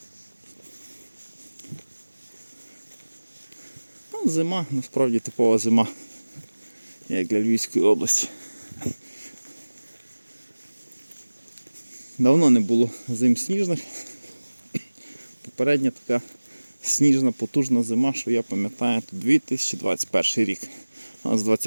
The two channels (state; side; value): inverted; both; correlation -1.00